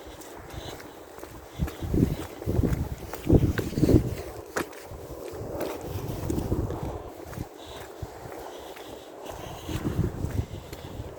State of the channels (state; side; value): identical; both; correlation 1.00